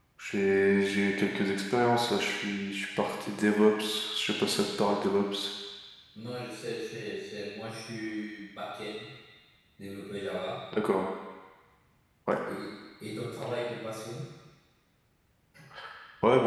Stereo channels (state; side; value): identical; both; correlation 1.00